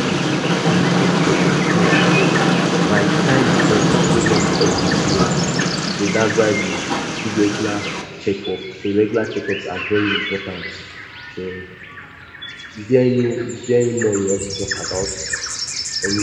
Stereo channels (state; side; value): identical; both; correlation 1.00